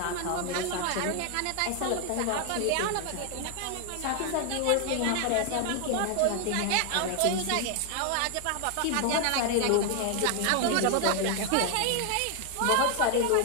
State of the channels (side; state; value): both; different; correlation 0.00